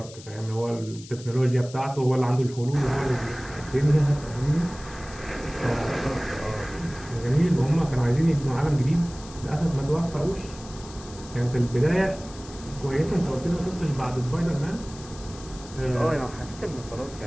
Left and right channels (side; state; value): left; noise; hiss, 18 dB below the sound